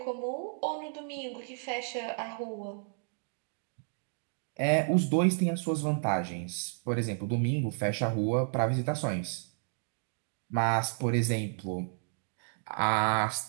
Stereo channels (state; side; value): silent; left; digital silence